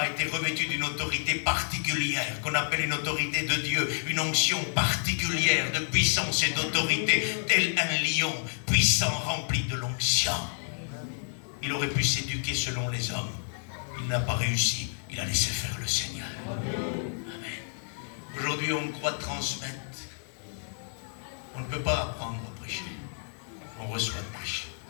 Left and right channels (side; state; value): right; silent; digital silence